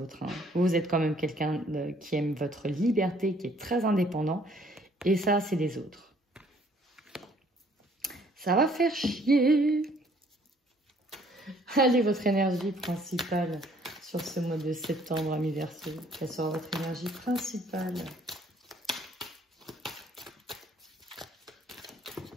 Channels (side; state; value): both; normal; correlation 0.61